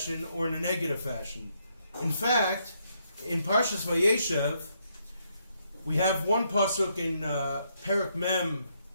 or in a negative fashion. In fact, in Parshas Vayeshev, we have one pasuk in Perek Mem,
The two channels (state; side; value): inverted; both; correlation -0.75